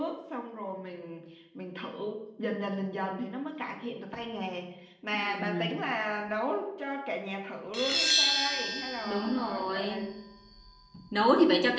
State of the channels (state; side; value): identical; both; correlation 1.00